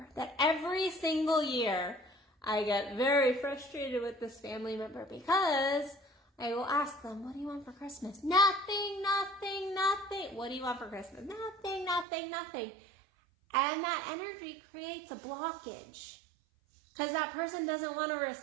that every single year I get very frustrated with this family member, because I will ask them, what do you want for Christmas? Nothing. What do you want for Christmas? Nothing. And that energy creates a blockage, because that person doesn't want to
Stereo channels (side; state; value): left; drops out; at 12.1 s